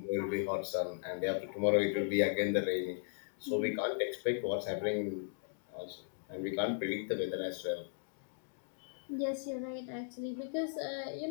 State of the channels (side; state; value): right; silent; digital silence